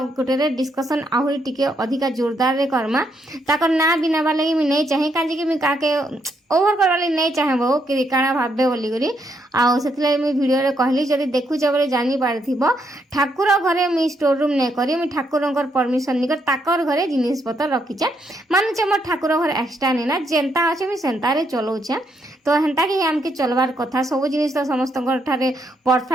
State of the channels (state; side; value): normal; both; correlation 0.76